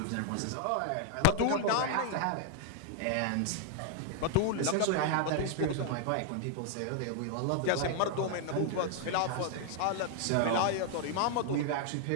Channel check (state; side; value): different; both; correlation 0.00